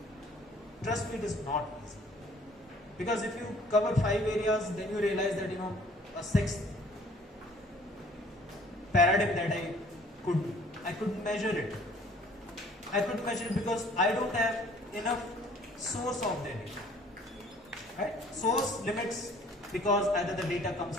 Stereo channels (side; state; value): both; normal; correlation 0.55